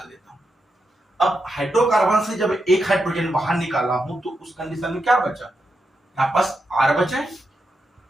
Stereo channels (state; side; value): normal; both; correlation 0.86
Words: देता हूं। अब हाइड्रोकार्बन से जब एक हाइड्रोजन बाहर निकाला हूं तो उस कंडीशन में क्या बचा? यहां पास R बचा है,